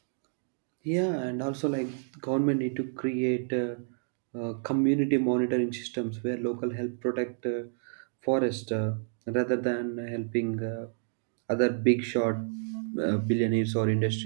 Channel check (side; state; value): left; silent; digital silence